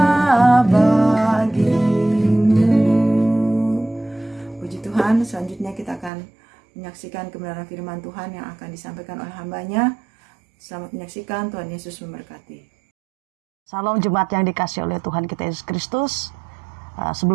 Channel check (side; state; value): left; drops out; at 6.1 s